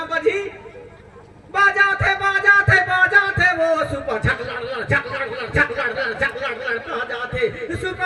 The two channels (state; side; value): identical; both; correlation 1.00